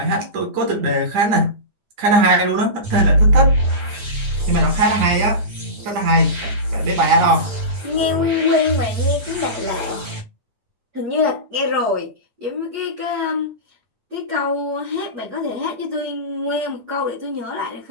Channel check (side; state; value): left; late; 9.8 ms